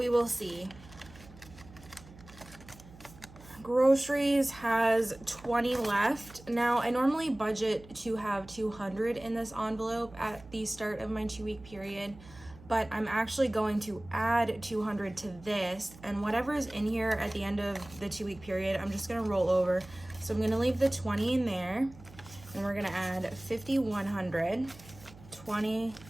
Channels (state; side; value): noise; right; hum, 20 dB below the sound